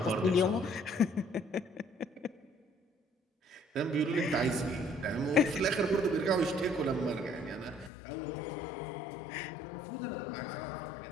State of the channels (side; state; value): right; drops out; at 7.9 s